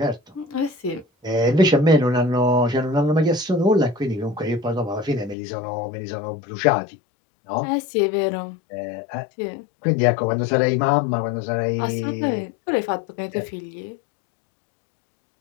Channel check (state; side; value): drops out; right; at 5.4 s